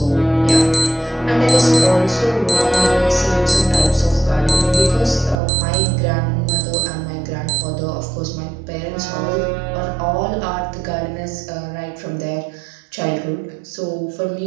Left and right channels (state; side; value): drops out; left; at 5.4 s